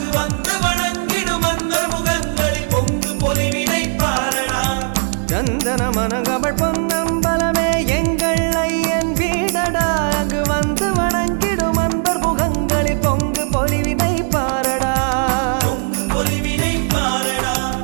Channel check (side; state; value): left; silent; 65 dB below the other